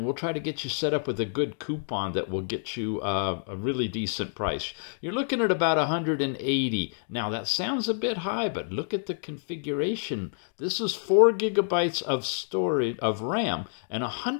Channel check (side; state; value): right; silent; digital silence